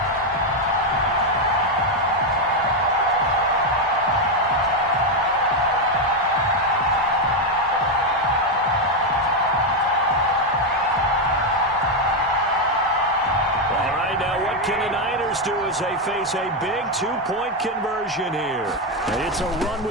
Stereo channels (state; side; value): normal; both; correlation 0.05